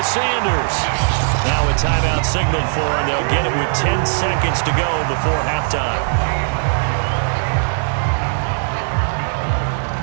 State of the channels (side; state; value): left; silent; digital silence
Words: Sanders. Now a timeout signaled for, and they'll get it with 10 seconds to go before halftime.